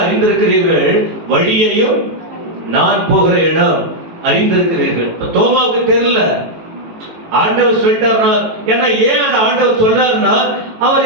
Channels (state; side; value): late; left; 18 ms